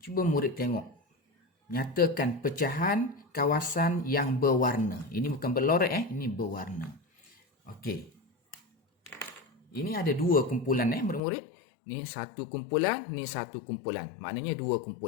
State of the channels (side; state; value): right; drops out; at 11.2 s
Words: cuba murid tengok. Nyatakan pecahan kawasan yang berwarna. Ini bukan berlorek ini berwarna. Okey. Ini ada dua kumpulan murid-murid. Ni satu kumpulan, ni satu kumpulan. Maknanya dua